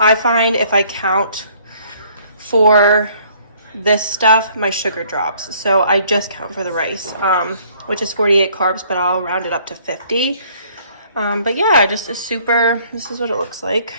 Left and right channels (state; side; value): inverted; both; correlation -0.60